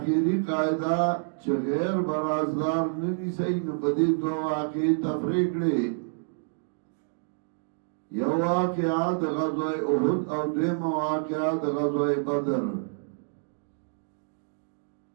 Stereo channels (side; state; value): left; silent; digital silence